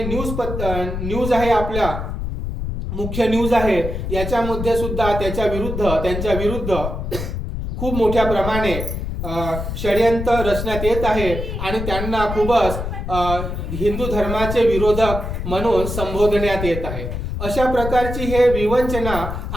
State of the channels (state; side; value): noise; left; rumble, 5 dB below the sound